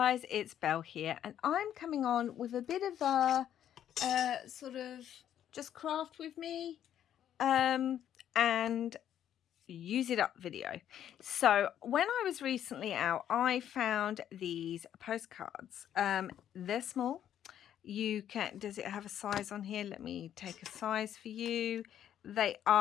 it's Belle here, and I'm coming on with a bit of a sort of just craft with me and use it up video. So when I was recently out, I found these postcards. They're small. Does it have a size on here? Let me take a size for you. They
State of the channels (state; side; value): quieter; right; 10.4 dB